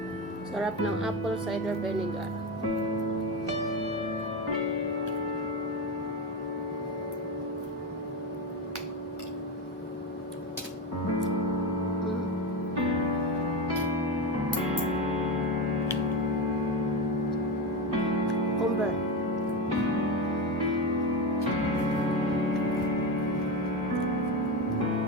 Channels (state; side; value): normal; both; correlation 0.17